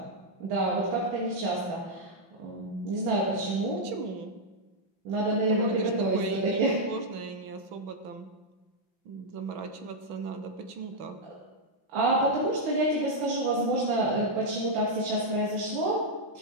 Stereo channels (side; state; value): left; late; 5.8 ms